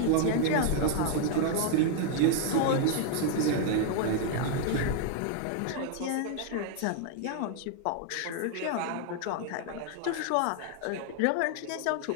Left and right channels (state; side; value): different; both; correlation 0.00